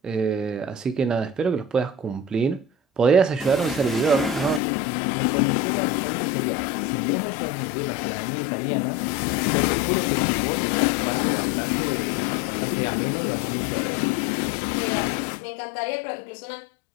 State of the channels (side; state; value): right; drops out; at 4.6 s